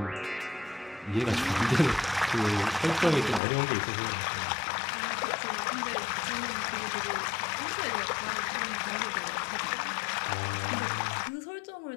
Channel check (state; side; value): drops out; right; at 3.4 s